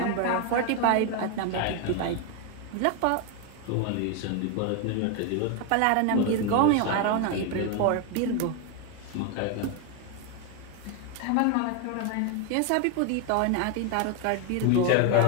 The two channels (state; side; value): different; both; correlation 0.01